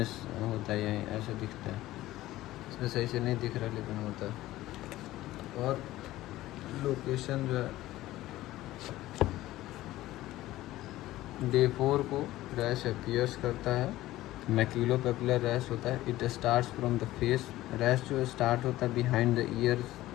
होता है यहीं ऐसा दिखता है। इसमें सही से नहीं दिख रहा लेकिन होता है। और लोकेशन जो है डे 4 को रैश अपीयर्स करता है। मैक्यूलोपेपुलर रैश होता है। It starts from the face. Rash जो स्टार्ट होता है बिहाइंड द ईयर,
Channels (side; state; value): right; quieter; 16.0 dB